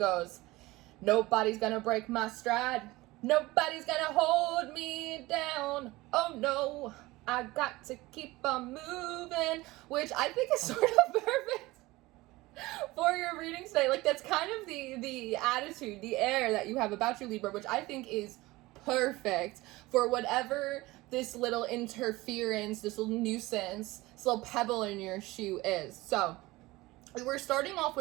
"Nobody's gonna break my stride. Nobody's gonna hold me down. Oh no, I got to keep on moving," which I think is sort of perfect for your reading today. Like, that's kind of the attitude, the air that you have about you, Libra, which I think is perfect for whatever this little interference, this little nuisance, this little pebble in your shoe is. So we're starting off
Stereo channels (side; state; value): left; quieter; 20.0 dB